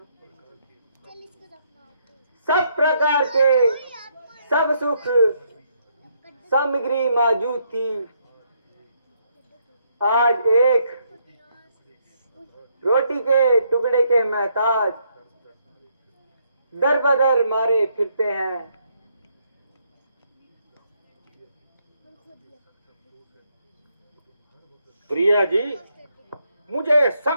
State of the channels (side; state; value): both; inverted; correlation -0.74